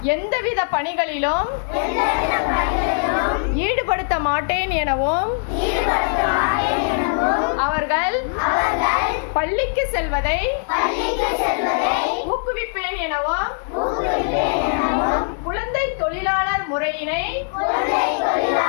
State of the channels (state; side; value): silent; right; digital silence